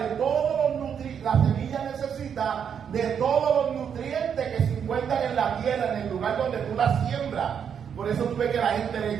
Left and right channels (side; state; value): left; quieter; 7.7 dB